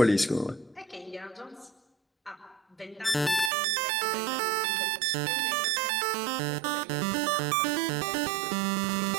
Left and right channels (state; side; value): drops out; left; at 3.5 s